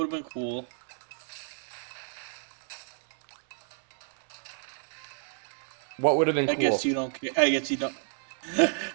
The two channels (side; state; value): left; silent; 58 dB below the other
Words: have been cool? What would have been I cool? guess you don't care. I guess you don't.